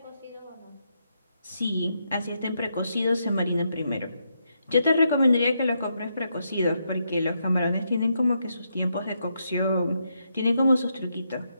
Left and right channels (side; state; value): both; inverted; correlation -0.80